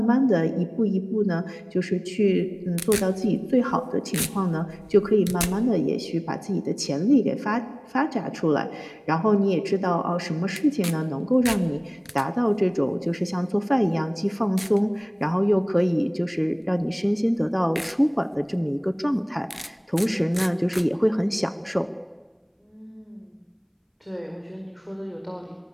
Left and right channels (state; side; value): identical; both; correlation 1.00